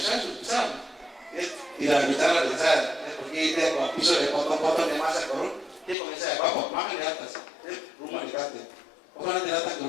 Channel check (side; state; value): right; drops out; at 6.0 s